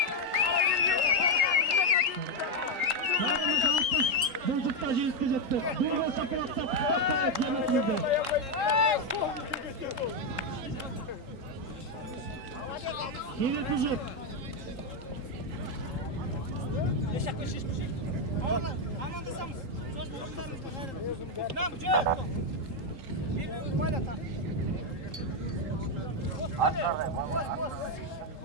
Bulcukta jeyizge жетті. Dur olsa kıraqtap. Yine tuzuk. Yaşak ve şişmişik. Amandasамыз. Söz durumlarımızda gayrı. Nam, cöp. Birbirimiz bayla tak. Hadi. Boz.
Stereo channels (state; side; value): late; left; 3.8 ms